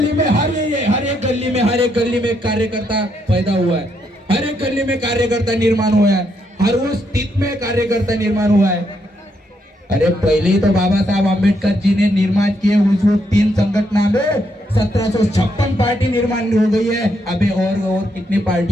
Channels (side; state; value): both; normal; correlation 0.77